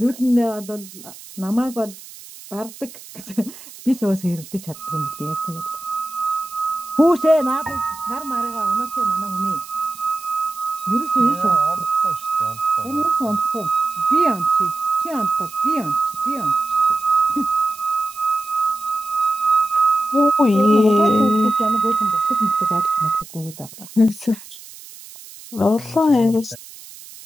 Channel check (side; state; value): right; noise; hiss, 17 dB below the sound